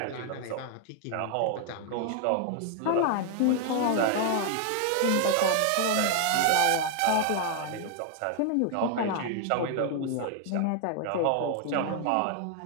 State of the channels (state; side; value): different; both; correlation 0.00